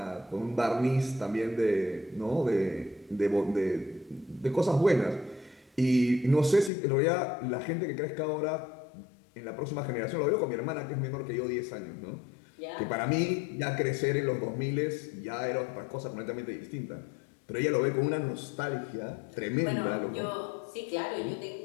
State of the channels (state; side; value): drops out; right; at 6.7 s